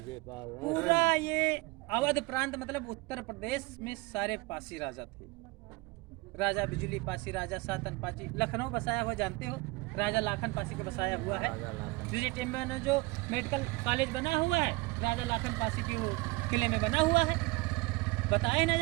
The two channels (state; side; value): quieter; left; 24.3 dB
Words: पूरा ये अवध प्रांत, मतलब उत्तर प्रदेश में सारे पासी राजा थे। राजा बिजली पासी, राजा सातन पासी, लखनऊ बसाया हुआ जानते हो, राजा लाखन पासी का बसाया हुआ है। टिम्बर में जो मेडिकल कॉलेज बना हुआ है, राजा लाखन पासी की वो किले में बना हुआ है। बताए